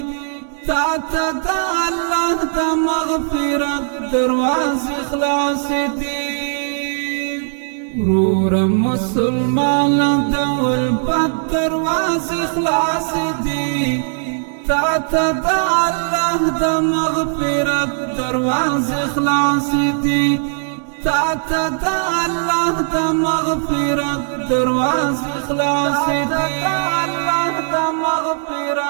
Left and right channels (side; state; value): left; silent; digital silence